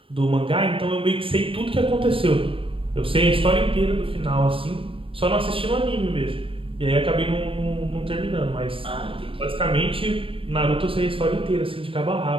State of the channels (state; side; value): late; left; 0.26 ms